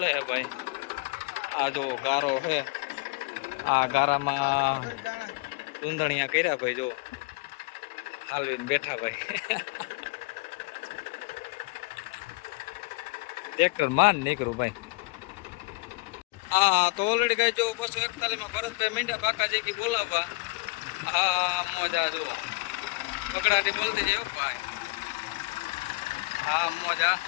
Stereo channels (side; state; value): right; quieter; 28.0 dB